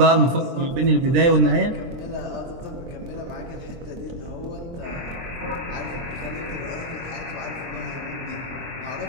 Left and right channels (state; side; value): late; left; 23 ms